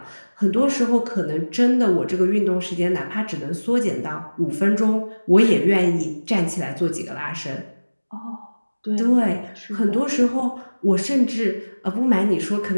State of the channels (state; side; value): inverted; both; correlation -1.00